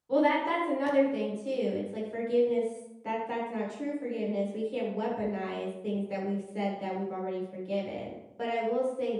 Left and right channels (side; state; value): both; identical; correlation 1.00